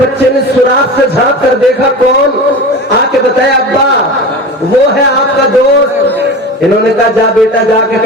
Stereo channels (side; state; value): both; normal; correlation 0.31